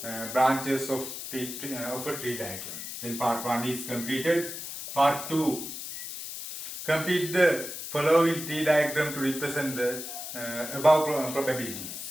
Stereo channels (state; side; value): noise; left; hiss, 8 dB below the sound